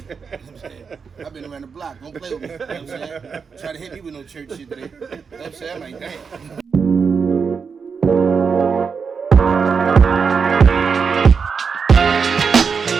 You know what I'm saying? I've been around the block. Don't play with me. You know what I'm saying? Try to hit me with no church shit today. You know what I'm saying? I'm like, damn.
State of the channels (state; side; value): quieter; left; 5.8 dB